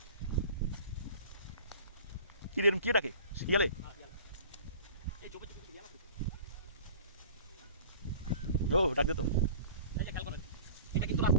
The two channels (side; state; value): both; inverted; correlation -0.44